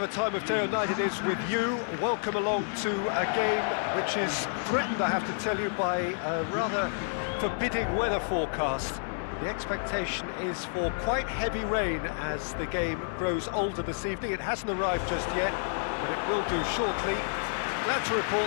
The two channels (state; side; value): silent; right; 58 dB below the other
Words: time of day or night it is with you, welcome along to a game which is threatened, I have to tell you, by a rather forbidding weather forecast. The expectation is for quite heavy rain as the game grows older this evening. It hasn't arrived just yet, but it will do shortly. Glad to